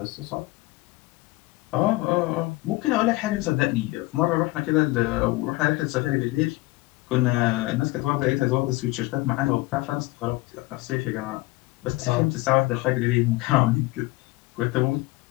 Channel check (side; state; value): right; quieter; 21.0 dB